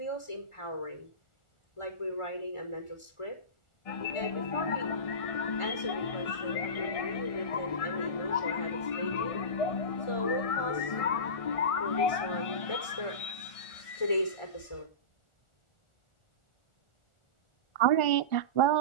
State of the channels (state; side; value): late; right; 1.5 ms